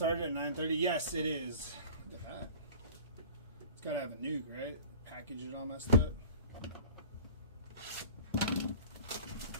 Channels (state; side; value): inverted; both; correlation -0.41